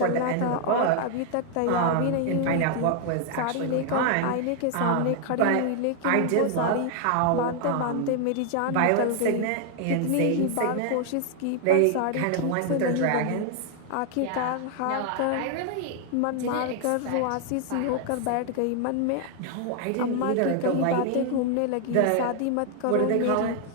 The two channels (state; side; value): different; both; correlation 0.00